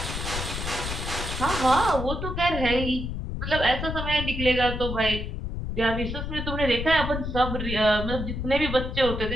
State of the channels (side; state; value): left; noise; rumble, 5 dB below the sound